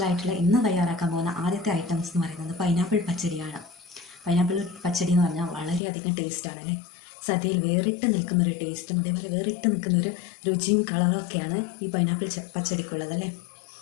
ആയിട്ടുള്ള ഇന്ന് തയ്യാറാക്കാൻ പോകുന്ന ആദ്യത്തെ ഐറ്റംസ് എന്ന് പറയുന്നത് പൈനാപ്പിൾ പച്ചടിയാണ്. പൈനാപ്പിൾ പച്ചടി എന്ന് പറഞ്ഞാൽ വളരെയധികം ടേസ്റ്റാണ് അല്ലേ? സദ്യയിൽ വേറിട്ട് നിൽക്കുന്നൊരു ടേസ്റ്റും അതേപോലെ വേറിട്ട് നിൽക്കുന്നൊരു രുചിയും കളറും ഒക്കെയാണ് ഈ പൈനാപ്പിൾ പച്ചടിക്കുള്ളത് അല്ലേ?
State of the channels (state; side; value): drops out; right; at 5.8 s